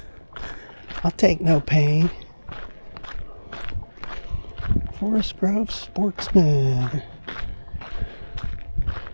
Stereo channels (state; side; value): inverted; both; correlation -1.00